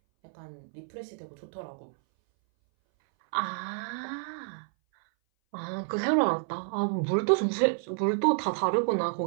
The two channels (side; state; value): left; silent; 58 dB below the other